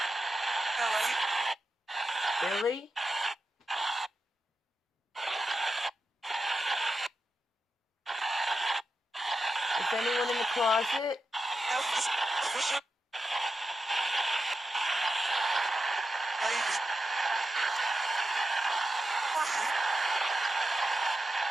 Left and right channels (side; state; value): both; normal; correlation 0.89